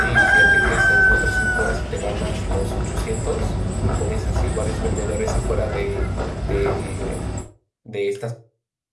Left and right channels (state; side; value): identical; both; correlation 1.00